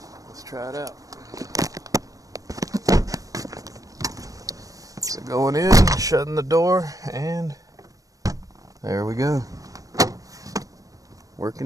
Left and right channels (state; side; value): late; left; 0.17 ms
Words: let's try it out. So going in, shutting the door, and there we go.